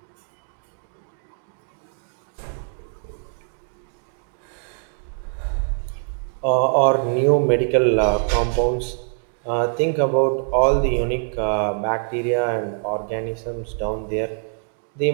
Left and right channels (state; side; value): silent; left; 63 dB below the other